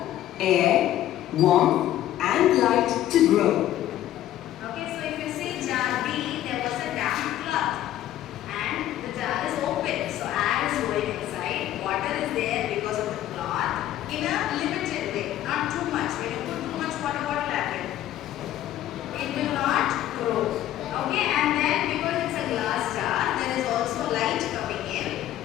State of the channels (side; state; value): right; quieter; 12.9 dB